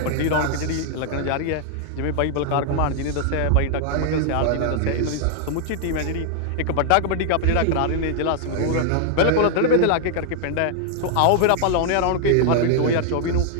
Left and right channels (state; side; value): different; both; correlation -0.01